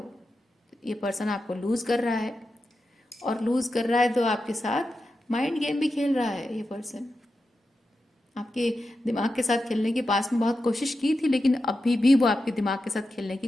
ये पर्सन आपको लूज़ कर रहा है, और लूज़ कर रहा है तो आपके साथ माइंड गेम भी खेल रहा है। ये पर्सन आपके दिमाग के साथ खेलने की पास में बहुत कोशिश की थी, लेकिन अभी भी वो आपके दिमाग के साथ खेलने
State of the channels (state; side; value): normal; both; correlation 0.90